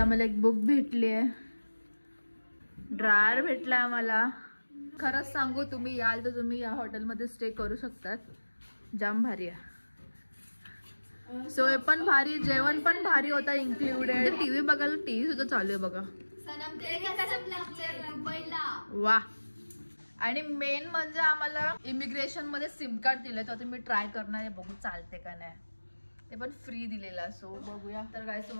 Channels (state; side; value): inverted; both; correlation -1.00